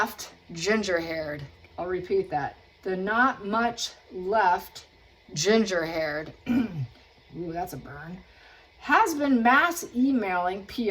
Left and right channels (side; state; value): both; identical; correlation 1.00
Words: ginger-haired. I'll repeat that. The not much left ginger-haired. Ooh, that's a burn. Has been mass emailing